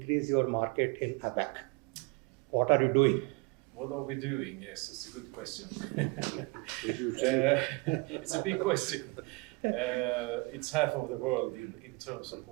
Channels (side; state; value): left; quieter; 27.6 dB